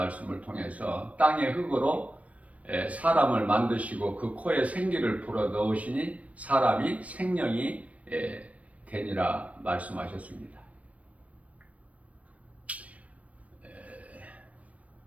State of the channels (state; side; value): late; left; 0.066 ms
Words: 통해서 땅의 흙으로 사람을 만드시고 그 코에 생기를 불어 넣으시니 사람이 생명이 되니라 말씀하셨습니다.